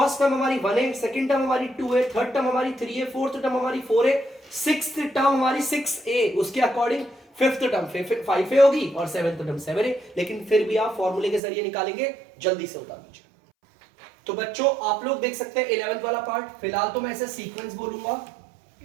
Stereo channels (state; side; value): drops out; left; at 11.4 s